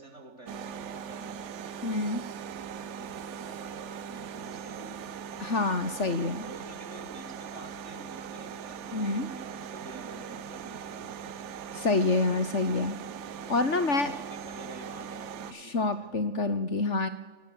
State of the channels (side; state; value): right; late; 3.4 ms